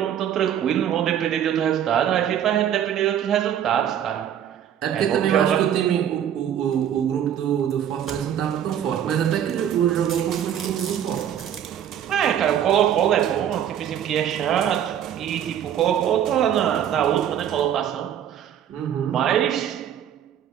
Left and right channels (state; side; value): quieter; left; 9.8 dB